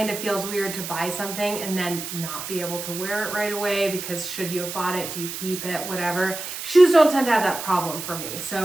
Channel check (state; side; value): noise; right; hiss, 7 dB below the sound